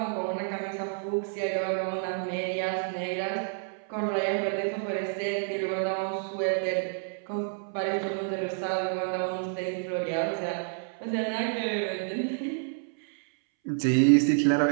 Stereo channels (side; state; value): left; silent; 59 dB below the other